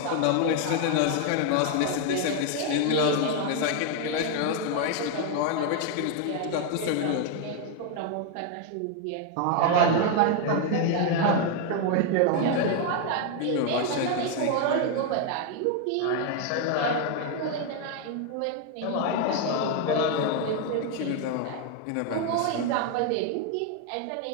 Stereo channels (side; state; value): both; different; correlation 0.01